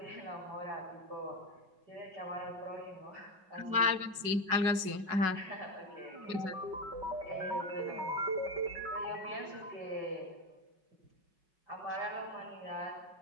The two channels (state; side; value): late; left; 5.4 ms